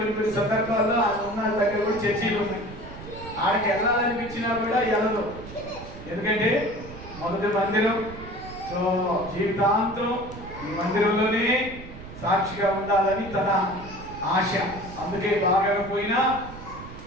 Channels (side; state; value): right; noise; rumble, 14 dB below the sound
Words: సందర్భాల్లో ఆమె ఉన్న దగ్గర కూడా చర్చీలు ఉన్నాయి. ఆడికి వెళ్ళాలనిపించినా కూడా వెళ్ళదు. ఎందుకంటే మొదటి మందిరం. సో జీవితాంతం ఈ మందిరంలోనే సాక్షిగా ఉండాలని తన ఆశ. అందుకే బాగా పోయినా